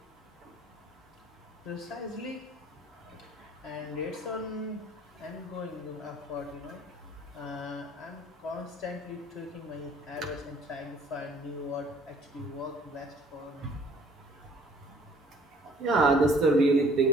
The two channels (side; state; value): both; normal; correlation 0.56